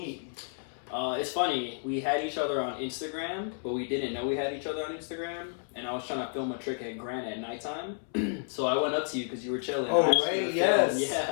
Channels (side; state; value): right; silent; 57 dB below the other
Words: It's funny, we had each other on Instagram, but we didn't know we had each other on Instagram. And I was trying to film a trick at Grant at nighttime. So I went up to you because you were chilling. Oh, I asked you right, to yes. film.